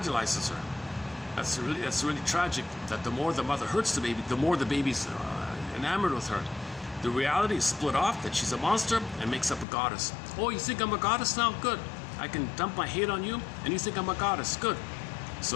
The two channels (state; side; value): drops out; right; at 9.7 s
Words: her. That's really tragic, that the more the mother hurts the baby, the more the baby's enamored with her. The reality is split off, that she's a monster and makes up a goddess. Oh, you think I'm a goddess now? Good. I can dump my hate on you, and you think I'm a goddess. Good.